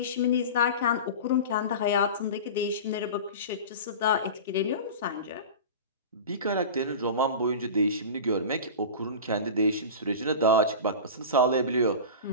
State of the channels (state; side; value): inverted; both; correlation -0.31